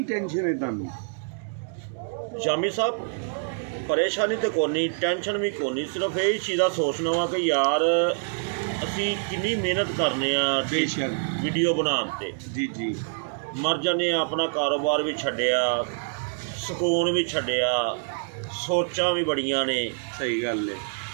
ਟੈਨਸ਼ਨ ਹੈ ਤੁਹਾਨੂੰ? शामी साहब परेशानी तो कोनी, टेंशन भी कोनी, सिर्फ यही चीज़ का सोचना वा कि यार असी कितनी मेहनत करने बेशक वीडियो बनाने जी जी मर जाने, अपना कारोबार भी छड्डिया, सुकून भी छड्डिया, सोचा भी बड़ियां ने। सही गल है।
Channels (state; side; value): silent; left; digital silence